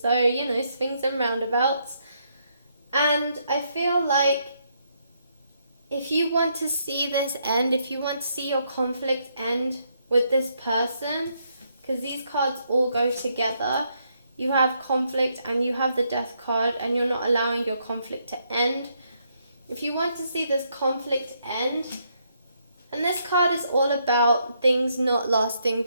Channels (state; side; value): inverted; both; correlation -0.75